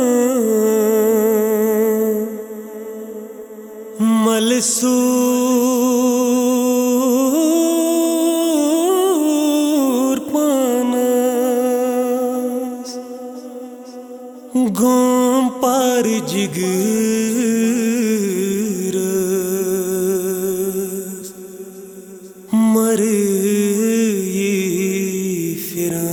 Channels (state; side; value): identical; both; correlation 1.00